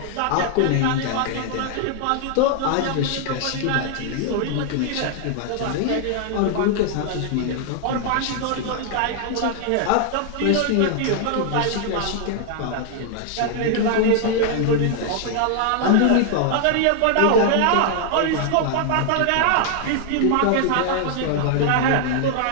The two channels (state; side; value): different; both; correlation 0.00